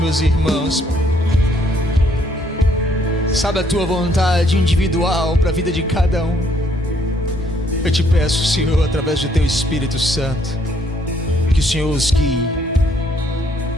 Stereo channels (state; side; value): normal; both; correlation 0.68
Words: irmãos. Sabe a tua vontade individual para a vida de cada um. Eu te peço, Senhor, através do teu Espírito Santo, que o Senhor os guie